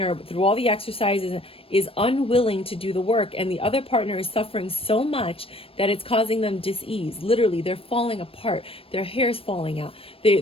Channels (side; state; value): right; late; 0.27 ms